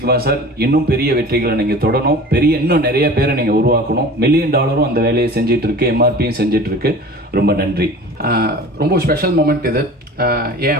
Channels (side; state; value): both; normal; correlation 0.40